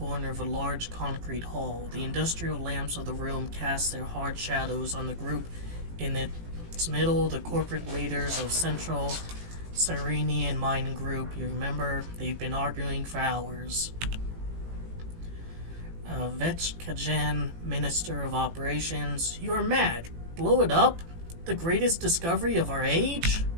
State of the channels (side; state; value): left; late; 18 ms